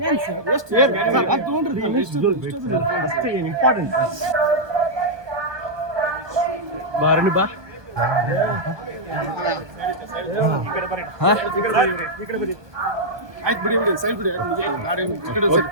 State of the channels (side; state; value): left; late; 1.2 ms